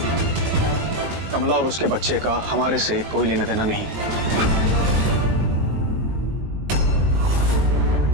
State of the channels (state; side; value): late; left; 19 ms